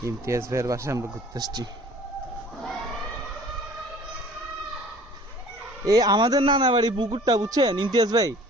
ইমতিয়াজ ভাইয়ের বাসায় আমরা ঘুরতে আসছি। এই আমাদের নানা বাড়ি পুকুরটা বুঝছেন ইমতিয়াজ ভাই,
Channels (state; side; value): normal; both; correlation 0.49